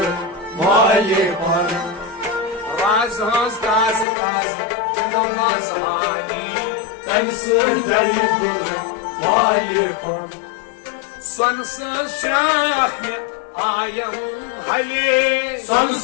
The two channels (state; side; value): drops out; right; at 4.0 s